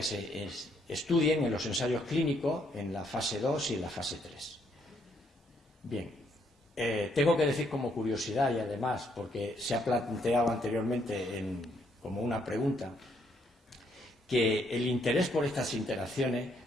se estudien en los ensayos clínicos en la fase 2 y en la fase 3. Bien, tengo que decir como curiosidad y además porque se ha planteado anteriormente como una pregunta, que el interés por estas interacciones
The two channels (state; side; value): normal; both; correlation 0.71